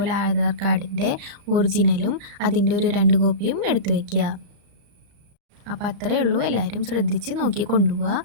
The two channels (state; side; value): late; left; 34 ms